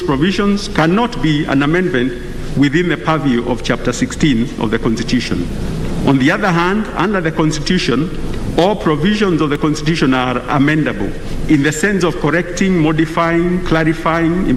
provisions cannot be an amendment within the purview of Chapter 16 of the Constitution. On the other hand, under the Constitution, all provisions of the Constitution are amendable in the sense of correcting, modifying, clarifying,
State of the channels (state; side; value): identical; both; correlation 1.00